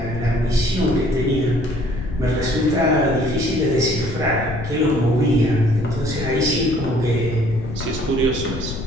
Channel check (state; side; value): noise; left; rumble, 8 dB below the sound